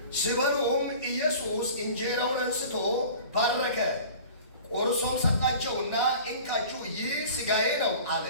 ሲበሉም ኢየሱስ እንጀራውን አንስቶ ባረከ፣ ቆርሶም ሰጣቸውና እንካችሁ ይህ ሥጋዬ ነው አለ።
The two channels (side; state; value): both; inverted; correlation -0.42